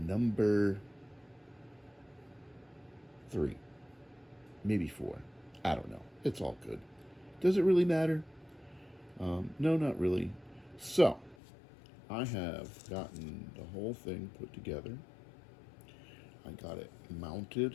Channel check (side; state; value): right; drops out; at 11.4 s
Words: 3, maybe 4. I don't know. It's all good. Does it really matter? No, not really. So, I have gotten the whole thing put together. I got it